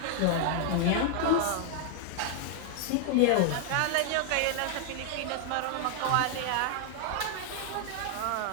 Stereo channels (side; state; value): both; different; correlation 0.00